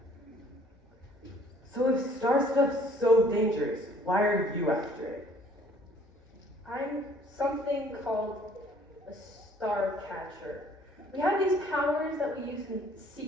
So if star stuff's so dangerous, why are you after it? I'm something called a Starcatcher. We have these powers that we use in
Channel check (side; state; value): both; normal; correlation 0.58